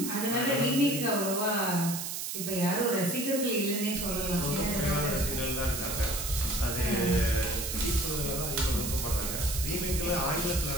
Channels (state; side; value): noise; right; hiss, 4 dB below the sound